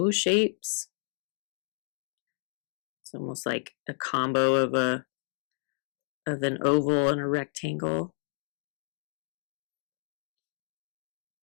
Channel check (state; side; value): silent; right; digital silence